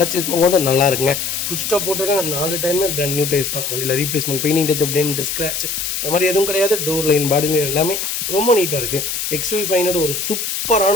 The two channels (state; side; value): noise; left; hiss, 3 dB below the sound